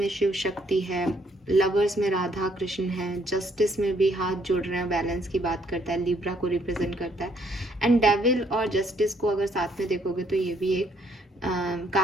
शिव शक्ति है, लवर्स में राधा कृष्ण है, जस्टिस में भी हाथ जोड़ रहे हैं, बैलेंस की बात करता है, लिब्रा को रिप्रेजेंट करता है, एंड डेविल और जस्टिस को अगर साथ में देखोगे तो ये भी एक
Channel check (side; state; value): both; normal; correlation 0.68